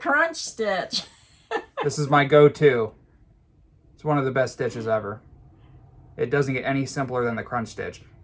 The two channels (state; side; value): identical; both; correlation 1.00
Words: stitch. This is my go-to. It's one of the best stitches ever. It doesn't get any simpler than the crunch stitch.